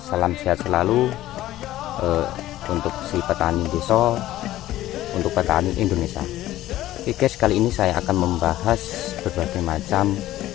Salam sehat selalu untuk si petani desa, untuk petani Indonesia. Oke guys, kali ini saya akan membahas berbagai macam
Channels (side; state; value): right; quieter; 14.7 dB